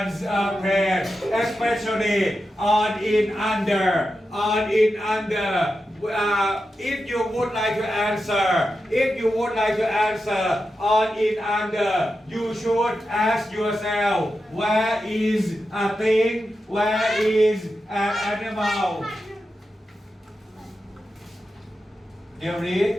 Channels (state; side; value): normal; both; correlation 0.90